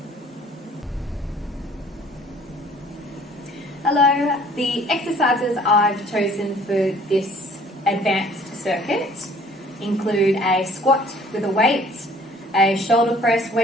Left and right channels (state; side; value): normal; both; correlation 0.55